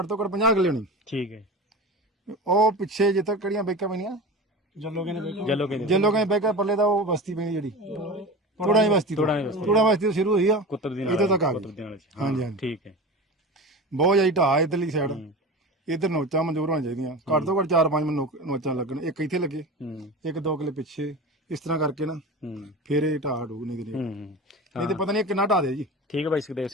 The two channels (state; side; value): normal; both; correlation 0.30